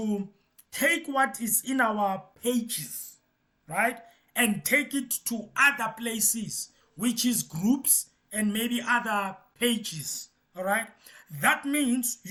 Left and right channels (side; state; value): both; identical; correlation 1.00